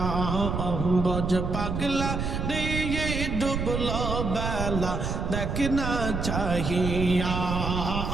বজ পাগলা রে ডুবলো বেলা দেখনা চাহিয়া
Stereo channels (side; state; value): right; noise; rumble, 2 dB below the sound